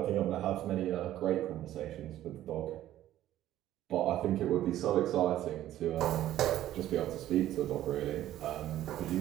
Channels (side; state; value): left; quieter; 13.1 dB